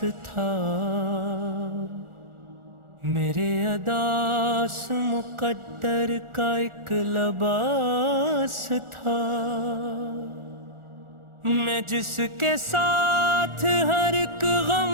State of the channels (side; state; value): left; late; 1.4 ms